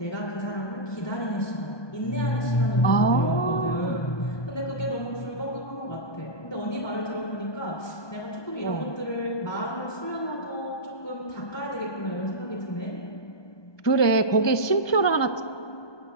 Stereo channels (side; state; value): right; late; 1.2 ms